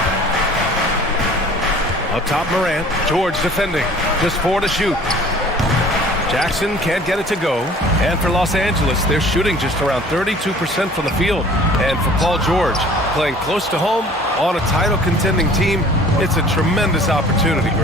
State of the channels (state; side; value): normal; both; correlation 0.49